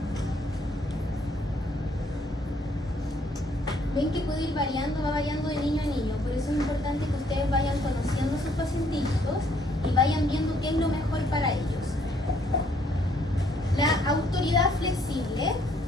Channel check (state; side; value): normal; both; correlation 0.66